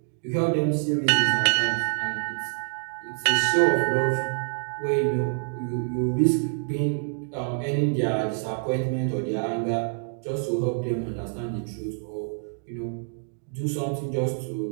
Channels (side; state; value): left; silent; digital silence